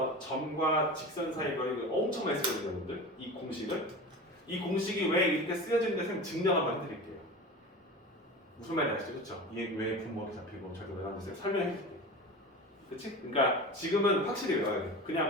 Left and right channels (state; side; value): normal; both; correlation 0.31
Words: 점과 직선 사이 거리를 엄청 많이 쓰거든요, 여러분들. 이 공식을. 이 공식이 왜 이렇게 쓰여지는지 쌤 증명 한번 해드릴게요. 무슨 말인지 아시죠? 그쵸? 이게 왜 분모가 잡히고 저렇게 외워서 쌤 설명해 줄게요. 그치? 그러니까 지금은 확실히 외워야 돼.